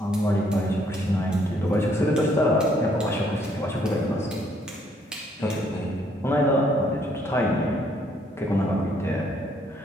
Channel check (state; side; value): normal; both; correlation 0.68